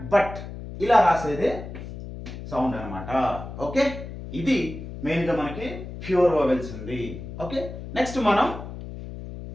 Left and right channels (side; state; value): left; noise; hum, 10 dB below the sound